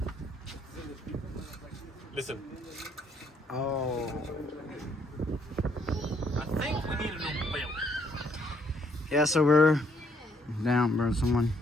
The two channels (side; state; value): both; normal; correlation 0.68